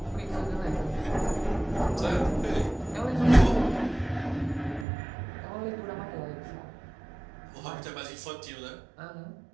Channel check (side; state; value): left; drops out; at 4.9 s